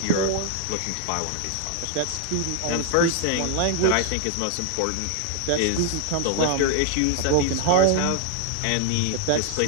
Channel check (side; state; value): both; different; correlation 0.00